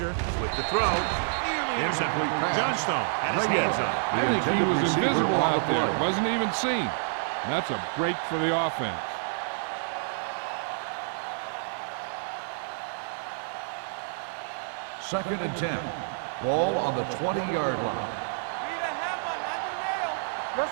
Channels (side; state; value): left; silent; digital silence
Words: with the throw. Nearly intercepted. Johnstone had his hands on it. I think he was invisible out there. Wasn't even seen. And that's a break for the offense. Second and 10. Ball on the 20-yard line. Let's